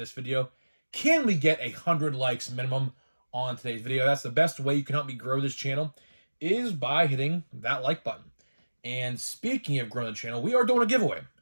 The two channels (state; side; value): inverted; both; correlation -1.00